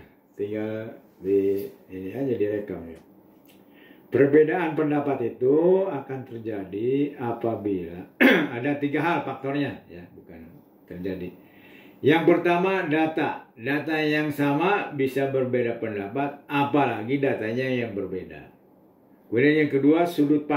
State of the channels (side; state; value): both; identical; correlation 1.00